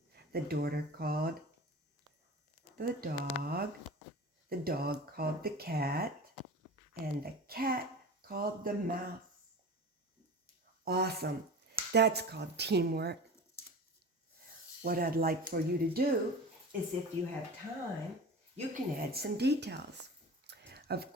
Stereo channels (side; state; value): both; normal; correlation 0.34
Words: called the dog called the cat, and the cat called the mouse. Awesome. That's called teamwork. What I'd like for you to do is, if you have time, you can add some details. Of